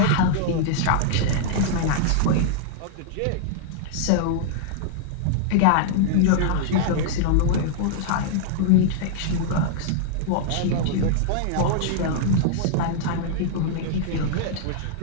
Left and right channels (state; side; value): different; both; correlation -0.01